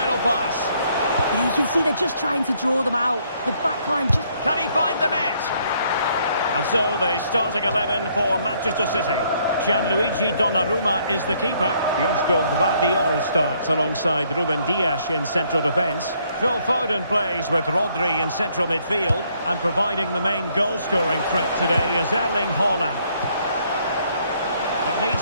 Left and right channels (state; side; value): inverted; both; correlation -0.68